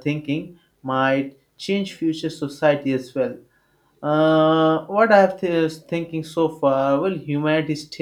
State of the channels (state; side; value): identical; both; correlation 1.00